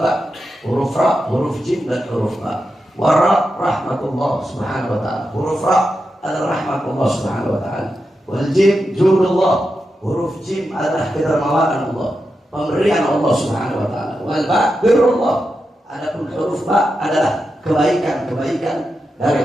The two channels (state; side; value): normal; both; correlation 0.88